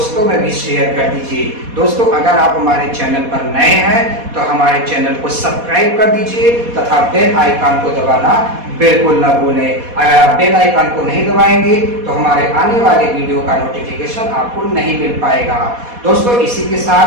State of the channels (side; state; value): left; late; 4.2 ms